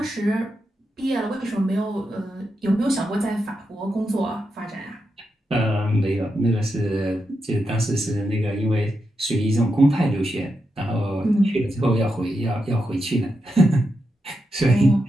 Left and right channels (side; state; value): both; normal; correlation 0.86